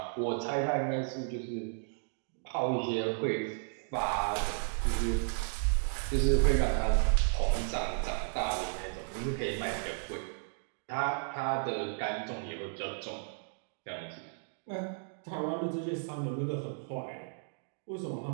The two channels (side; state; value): left; silent; digital silence